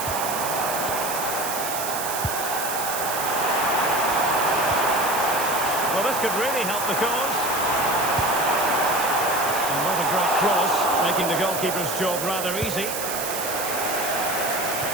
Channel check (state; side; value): noise; right; hiss, 5 dB below the sound